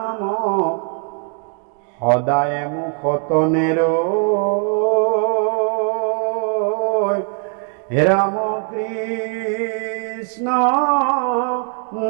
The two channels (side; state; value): left; quieter; 39.5 dB